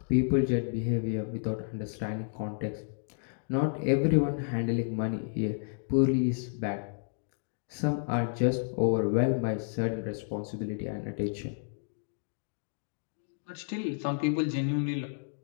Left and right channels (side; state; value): right; silent; digital silence